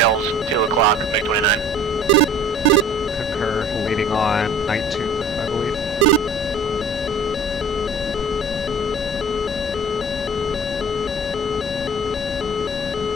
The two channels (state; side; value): normal; both; correlation 0.46